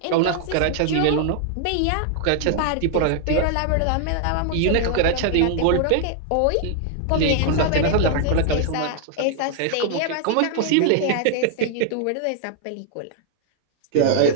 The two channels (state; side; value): different; both; correlation 0.00